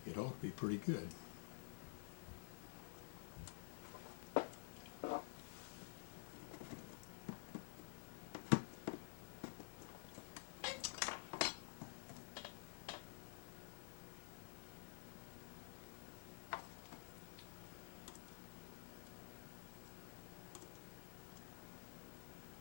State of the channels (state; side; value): silent; right; digital silence